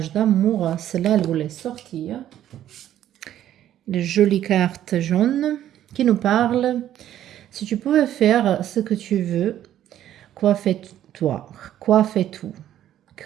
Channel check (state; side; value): quieter; left; 11.7 dB